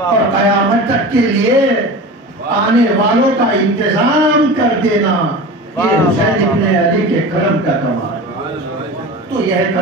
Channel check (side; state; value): both; normal; correlation 0.32